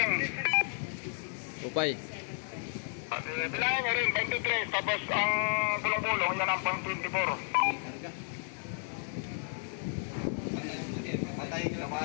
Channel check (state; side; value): silent; right; 56 dB below the other